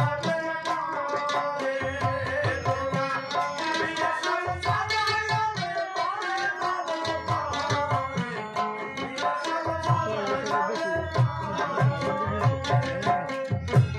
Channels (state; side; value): identical; both; correlation 1.00